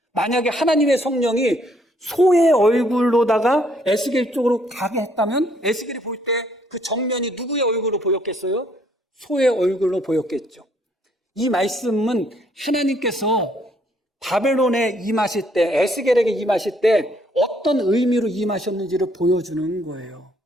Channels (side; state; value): both; normal; correlation 0.67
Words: 만약에 하나님의 성령이 소의 얼굴로다가 에스겔 쪽으로 가게 했다면 에스겔이 볼 때 그 정면이 누구의 얼굴로 보였겠어요? 소의 얼굴로 보였겠죠. 이 말씀은 하나님께서 바벨론에 임하실 때, 에스겔에게 임하실 때 어떤 의미로 임하셨는지를 보여주는 거예요.